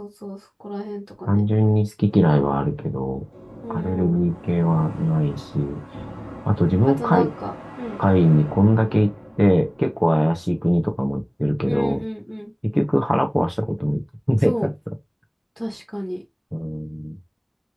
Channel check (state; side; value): identical; both; correlation 1.00